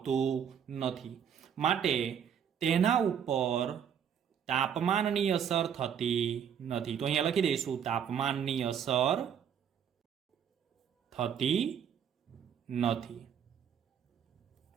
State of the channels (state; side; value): quieter; left; 8.3 dB